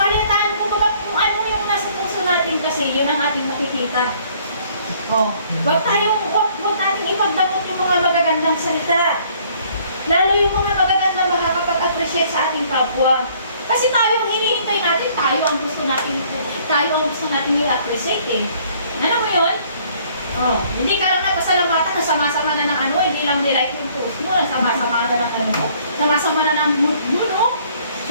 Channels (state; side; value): inverted; both; correlation -0.60